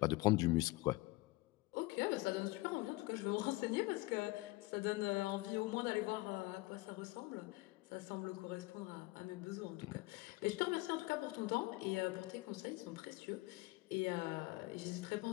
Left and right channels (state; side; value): quieter; right; 22.1 dB